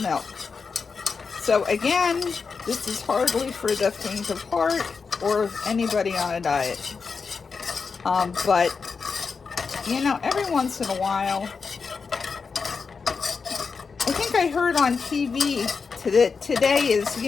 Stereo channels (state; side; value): quieter; right; 5.2 dB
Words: So again, this is hardly for the faint of heart or anybody on a diet. But, you know, every once in a while, I think I heard on TV that today is,